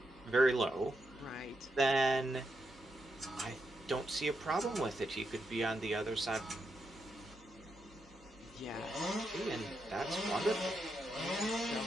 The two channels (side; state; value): both; normal; correlation 0.83